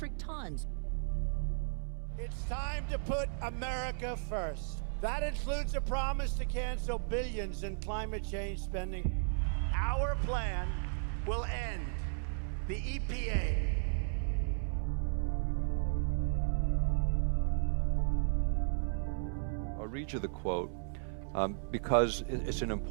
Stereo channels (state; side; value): silent; left; 55 dB below the other